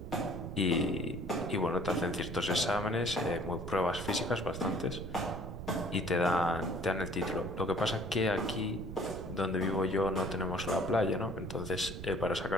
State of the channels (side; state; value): right; noise; rumble, 9 dB below the sound